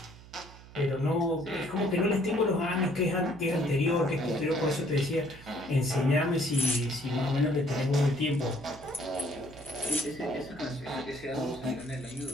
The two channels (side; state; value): right; noise; hum, 19 dB below the sound